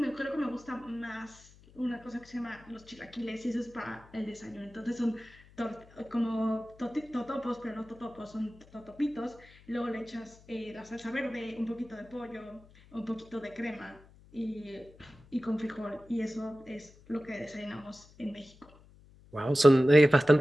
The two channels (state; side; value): noise; left; hum, 24 dB below the sound